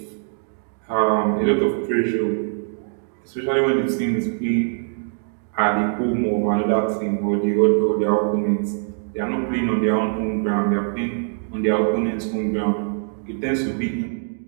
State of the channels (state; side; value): silent; left; digital silence